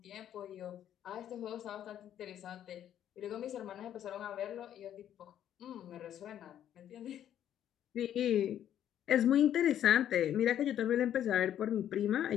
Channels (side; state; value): right; quieter; 10.6 dB